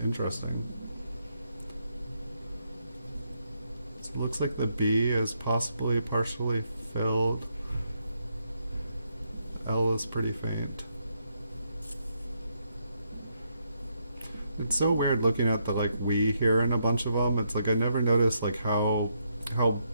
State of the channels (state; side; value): inverted; both; correlation -0.78